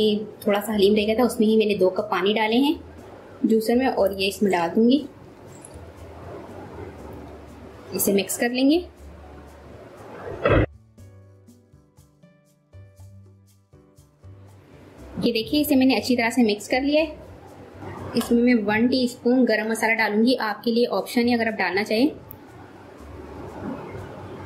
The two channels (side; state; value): both; identical; correlation 1.00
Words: थोड़ा सा हलीम रह गया था उसमें ही मैंने 2 कप पानी डाले हैं जूसर में। और ये इसमें डाल दूंगी। इसे मिक्स कर लेंगे। ये देखिए, इसे मैंने अच्छी तरह से मिक्स कर लिया है। इसमें मैं 1 टीस्पून गरम मसाला डालूंगी। आपके लिए ऑप्शन है, अगर आप डालना चाहें।